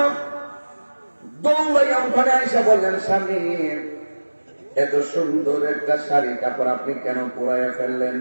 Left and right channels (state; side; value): inverted; both; correlation -1.00